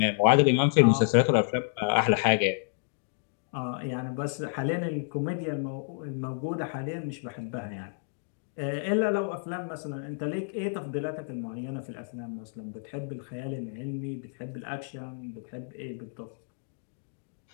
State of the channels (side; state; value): right; silent; digital silence